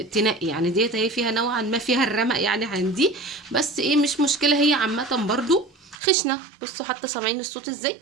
تنقي. يعني ديت هي فيها نوعا ما فيها الرمق يعني عندي، بس ايه مش مشكلة. هي عامة برضو خشنة. بصوا حتى سامعين الصوت ازاي،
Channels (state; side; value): drops out; left; at 6.0 s